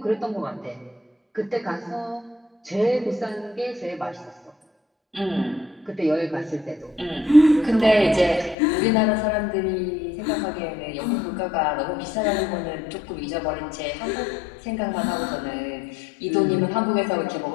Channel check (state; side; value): drops out; right; at 8.6 s